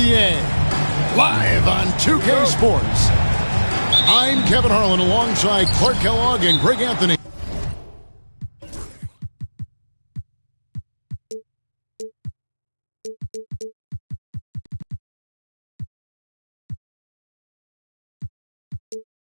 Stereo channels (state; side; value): inverted; both; correlation -1.00